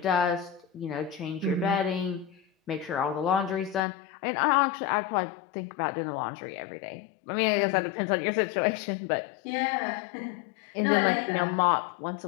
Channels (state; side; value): drops out; right; at 3.8 s